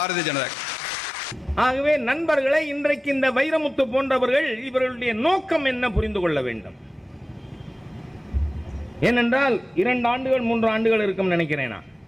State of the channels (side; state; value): both; normal; correlation 0.95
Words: ஜனதா. ஆகவே நண்பர்களை, இன்றைக்கு இந்த வைரமுத்து போன்றவர்கள் இவர்களுடைய நோக்கம் என்ன புரிந்து கொள்ள வேண்டும். ஏனென்றால் 2 ஆண்டுகள் 3 ஆண்டுகள் இருக்கும் நினைக்கிறேன் நான்,